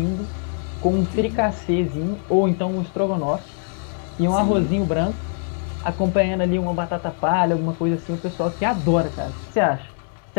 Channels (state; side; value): silent; right; 64 dB below the other